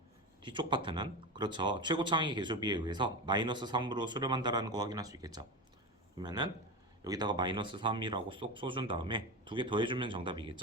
뒤쪽 파트는, 그렇죠, 최고차항의 개수비에 의해서 마이너스 3으로 수렴한다라는 거 확인할 수 있겠죠. 그러면은 여기다가 마이너스 3이라고 쏙 써준 다음에 두 개 더해주면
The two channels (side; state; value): both; normal; correlation 0.20